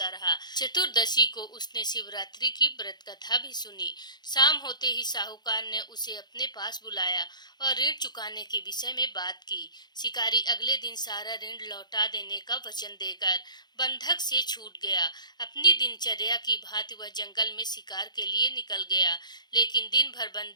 रहा। चतुर्दशी को उसने शिवरात्रि की व्रत कथा भी सुनी। शाम होते ही साहूकार ने उसे अपने पास बुलाया और ऋण चुकाने के विषय में बात की। शिकारी अगले दिन सारा ऋण लौटा देने का वचन देकर बंधक से छूट गया। अपनी दिनचर्या की भांति वह जंगल में शिकार के लिए निकल गया, लेकिन दिन भर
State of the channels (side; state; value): right; late; 0.21 ms